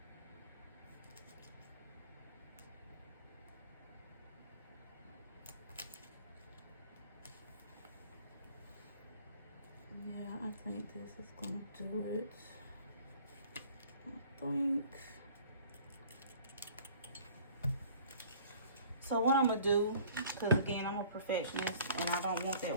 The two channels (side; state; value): both; inverted; correlation -0.51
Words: Yeah, I think this is going to do it. I think. So what I'm gonna do, because again, I'm a perfectionist and I don't want that